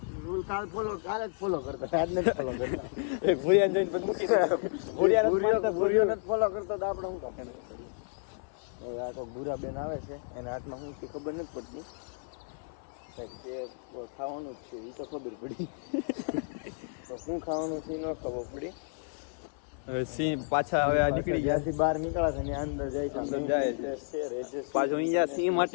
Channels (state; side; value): silent; right; 57 dB below the other